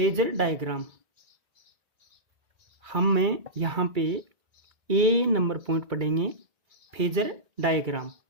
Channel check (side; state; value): left; late; 2.3 ms